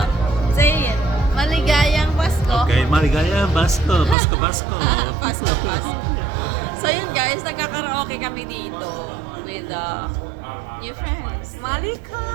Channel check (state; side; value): drops out; left; at 4.2 s